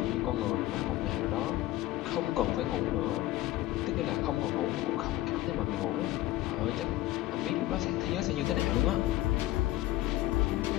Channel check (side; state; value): right; quieter; 16.1 dB